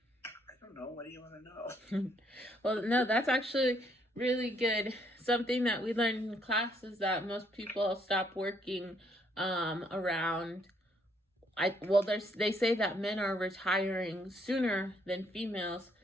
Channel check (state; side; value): normal; both; correlation 0.69